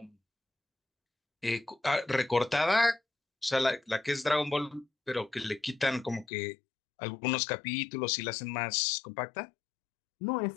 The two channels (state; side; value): drops out; right; at 6.2 s